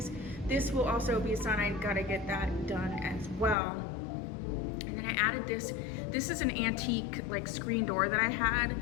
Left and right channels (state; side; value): drops out; right; at 3.6 s